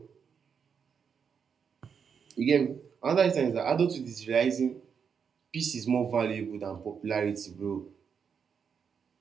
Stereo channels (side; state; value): left; quieter; 6.7 dB